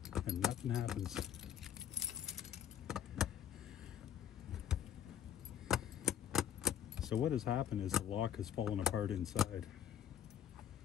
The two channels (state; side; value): quieter; right; 9.8 dB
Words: and nothing happens. So what has happened is the lock has fallen apart inside.